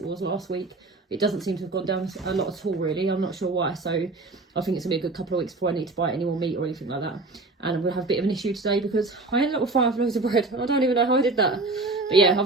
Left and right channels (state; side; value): quieter; left; 3.4 dB